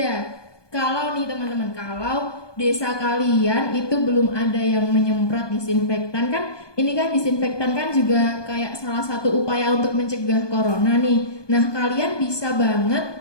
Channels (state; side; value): late; right; 1.2 ms